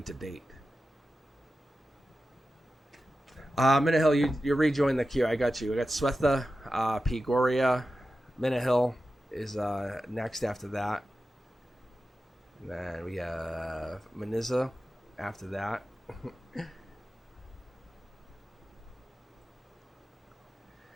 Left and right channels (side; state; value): both; normal; correlation 0.93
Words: to date. Minahill, you rejoin the queue. I got you. I got Swetha, P. Goria. Minahill is next after that. And then we have Maniza after that.